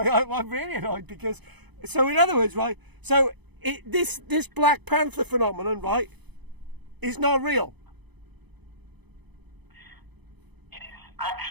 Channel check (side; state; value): left; late; 0.99 ms